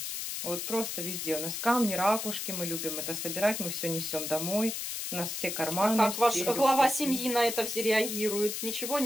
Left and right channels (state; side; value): noise; left; hiss, 4 dB below the sound